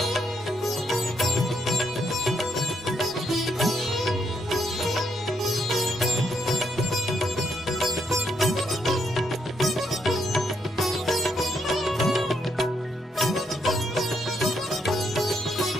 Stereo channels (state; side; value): normal; both; correlation 0.76